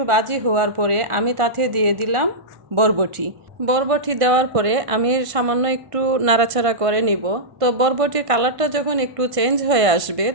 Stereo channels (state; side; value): late; left; 1.5 ms